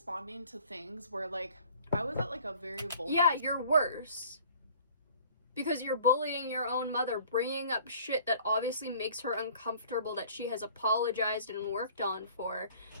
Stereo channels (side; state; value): both; inverted; correlation -0.52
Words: to things where, like, I was at, like, a very vulnerable... Yeah, you're worse. Because you're bullying your own mother, bringing up shit that obviously makes her uncomfortable, that she has apologized and worked on for.